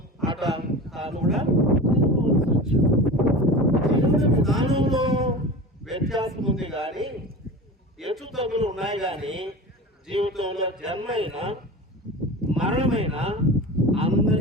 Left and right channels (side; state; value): both; normal; correlation 0.32